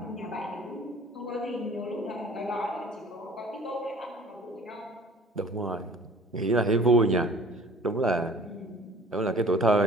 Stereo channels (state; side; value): normal; both; correlation 0.49